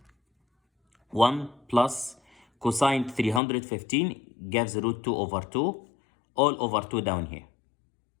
1 plus cosine 315 gives root 2 over 2, all over 2 down here.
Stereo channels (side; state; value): right; drops out; at 3.4 s